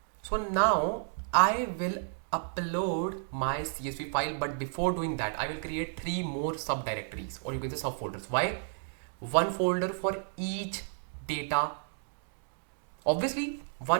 So now I will upload my CSV file, but before doing that, I will create 3 more subdirectories, or you can say subfolders. Why? One folder for each data. Obviously,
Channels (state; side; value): silent; left; digital silence